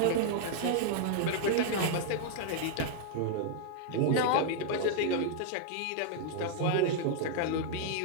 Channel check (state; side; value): different; both; correlation 0.00